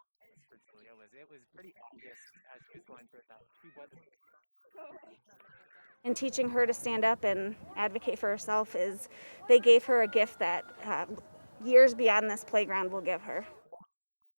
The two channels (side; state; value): both; inverted; correlation -1.00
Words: of the school's budget. It started with two of Julia's teachers urging the shy sixth grader to speak up. And teaching her to stand up and advocate for herself they gave her a gift that years beyond this playground will give her. What an